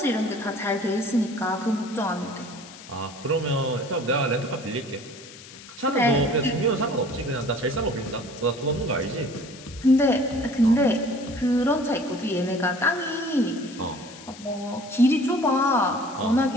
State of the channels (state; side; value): noise; left; hiss, 18 dB below the sound